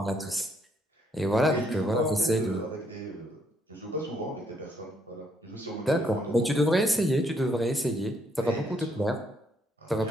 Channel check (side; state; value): both; normal; correlation 0.71